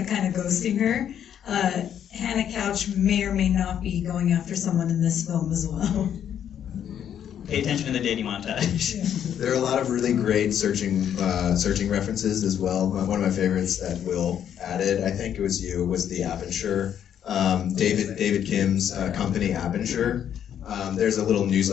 kind of ghosting her. Hannah Couch may or may not be going after someone in this film as well. Pay attention to the dating montage. There are a lot of really great searching references as well. One of my favorites that Will added, I think it was you, was the Aperture. David Kim's company, Aperture. There's a little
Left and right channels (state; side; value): quieter; right; 9.4 dB